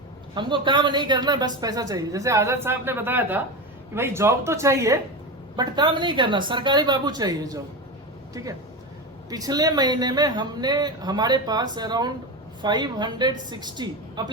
हमको काम नहीं करना, बस पैसा चाहिए। जैसे आजाद साहब ने बताया था कि भाई जॉब तो चाहिए बट काम नहीं करना, सरकारी बाबू चाहिए जॉब। ठीक है, पिछले महीने में हमारे पास अराउंड 560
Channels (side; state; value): both; normal; correlation 0.21